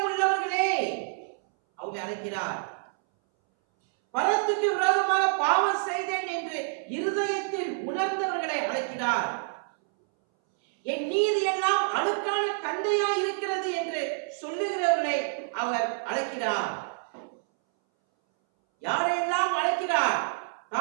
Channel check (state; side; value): silent; left; 60 dB below the other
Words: உள்ளவர்களே அவங்க அழைக்கிறார். பரத்துக்கு விரோதமாக பாவம் செய்தேன் என்று இருதயத்தில் உணர்ந்தவர்களை அழைக்கிறார். என் நீதி எல்லாம் அழுக்கான கந்தையா இருக்கிறது என்று சொல்லுகிறவர்களை அவர் அழைக்கிறார். யாரையெல்லாம் அழைக்கிறார்?